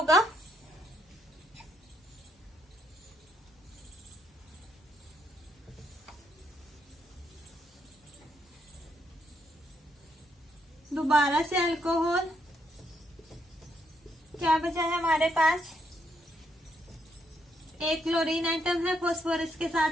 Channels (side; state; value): both; normal; correlation 0.76